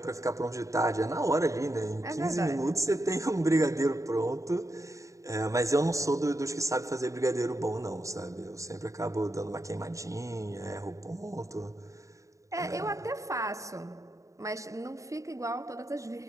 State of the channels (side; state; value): left; late; 0.16 ms